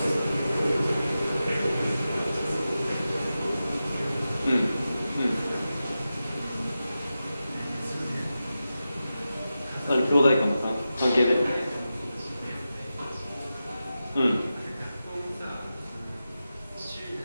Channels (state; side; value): inverted; both; correlation -0.92